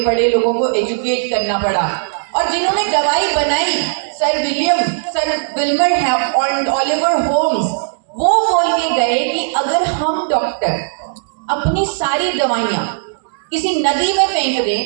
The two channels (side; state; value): left; silent; digital silence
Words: पड़े, लोगों को एजुकेट करना पड़ा। और जिन्होंने दवाई बनाई, सर विल्मर और ओलिवर होम्स, वो बोल के गए कि अगर हम डॉक्टर अपनी सारी दवाइयां किसी नदी में फेंक